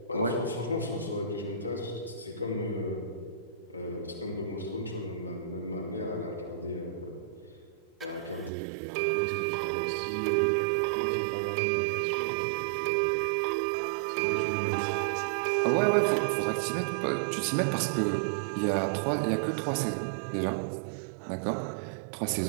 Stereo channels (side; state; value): left; drops out; at 8.5 s